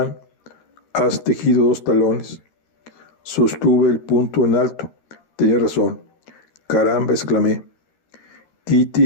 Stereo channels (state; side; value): late; right; 13 ms